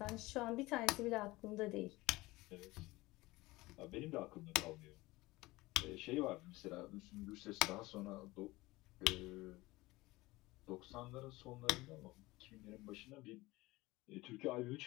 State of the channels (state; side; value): quieter; right; 20.3 dB